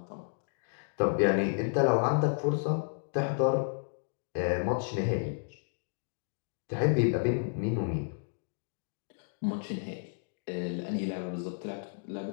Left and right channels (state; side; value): silent; right; digital silence